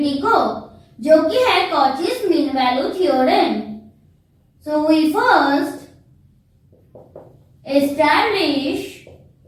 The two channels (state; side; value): identical; both; correlation 1.00